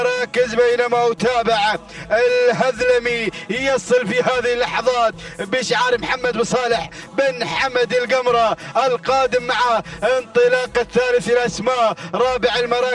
بينما أتابع الهذلمي يصل في هذه اللحظات بشعار محمد بن صالح بن حمد القمرة، القادم مع انطلاق الثالث الأسماء. رابع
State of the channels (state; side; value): identical; both; correlation 1.00